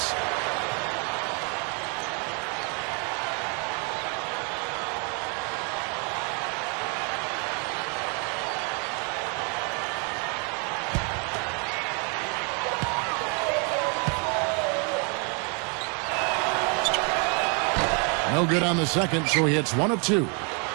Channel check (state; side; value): quieter; left; 36.1 dB